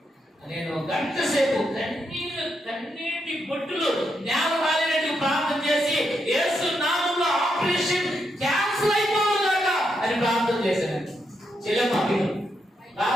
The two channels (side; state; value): both; normal; correlation 0.81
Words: నేను గంట సేపు కన్నీటి బొట్టులు నేల రాలినట్టు ప్రార్థన చేసి యేసు నామములో ఆపరేషన్ క్యాన్సిల్ అయిపోవుగాక అని ప్రార్థన చేశాను. చెల్లెమ్మ